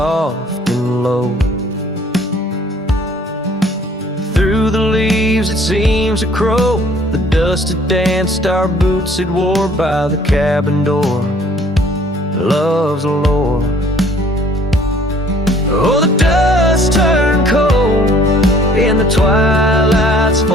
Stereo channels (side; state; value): both; normal; correlation 0.57